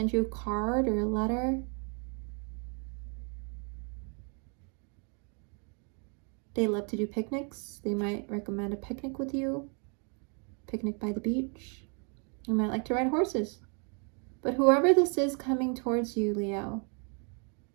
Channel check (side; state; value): left; quieter; 38.5 dB